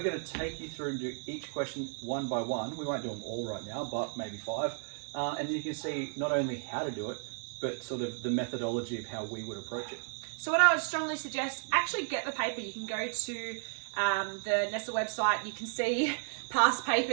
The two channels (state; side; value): silent; left; 55 dB below the other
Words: going to take you through and do each question one by one. We won't do them all right now, but maybe 5. And then you can see not only how to do it, but sort of the methodology of how we would approach it. So what I would strongly suggest, actually get the paper. You can go to the Nestle website, you can see past